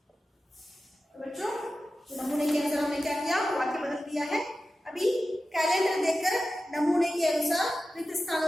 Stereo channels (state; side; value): normal; both; correlation 0.93